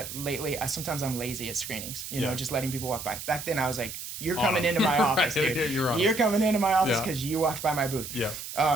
lately, sometimes I'm lazy at screenings, just letting people walk by. Back then I was like, You're coming into my office, Right. dude. You're coming into my office Yeah. because you walked by my booth. Yeah. How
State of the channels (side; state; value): right; noise; hiss, 9 dB below the sound